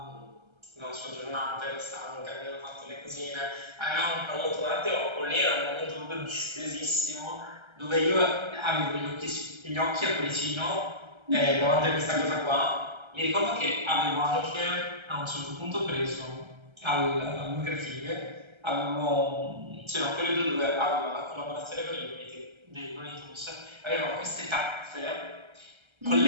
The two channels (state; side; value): late; left; 1.3 ms